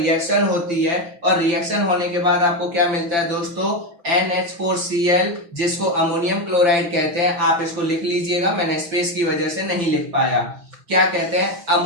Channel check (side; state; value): left; late; 5.8 ms